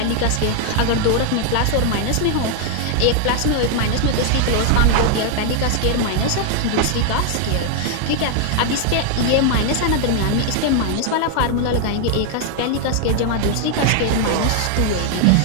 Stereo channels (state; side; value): different; both; correlation 0.00